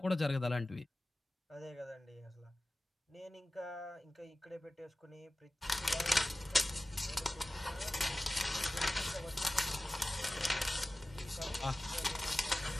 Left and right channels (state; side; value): normal; both; correlation 0.96